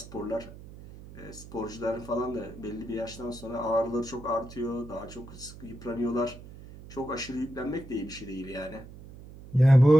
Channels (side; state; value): right; noise; hum, 16 dB below the sound